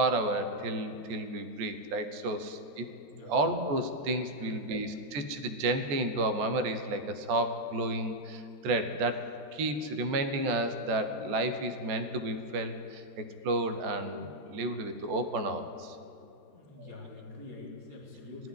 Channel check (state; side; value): late; left; 14 ms